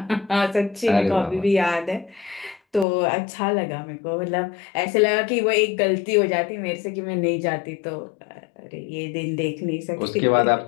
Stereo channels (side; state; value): right; drops out; at 2.9 s